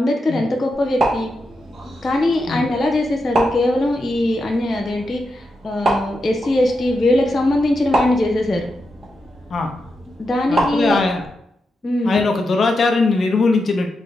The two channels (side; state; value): both; normal; correlation 0.87